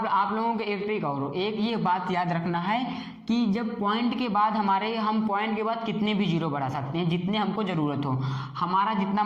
लोगों को एक ट्रिक और एक ये बात याद रखना है कि जब पॉइंट के बाद हम पॉइंट के बाद कितने भी जीरो बढ़ा सकते हैं, जितने हमको ज़रूरत हो, हमारा जितना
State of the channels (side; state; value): both; identical; correlation 1.00